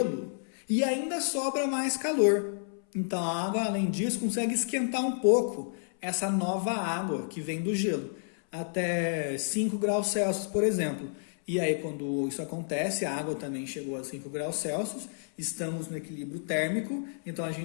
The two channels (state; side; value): silent; right; 58 dB below the other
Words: e ainda sobra mais calor. Então a água, além disso, consegue esquentar um pouco essa nova água que vem do gelo, até 5 graus Celsius, por exemplo. E aí, quando isso acontece, a água também chegou a 5 graus Celsius, estamos no equilíbrio térmico, então a